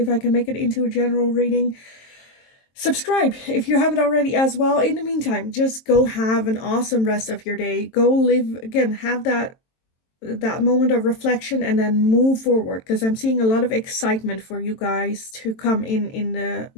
I can make it into a general reading. Subscribe if you haven't already as well. In the meantime, just go have an awesome rest of your day. Go live, again, have that moment of reflection and then move forward, because I'm seeing a lot of excitement for you guys to come in the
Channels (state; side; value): late; right; 22 ms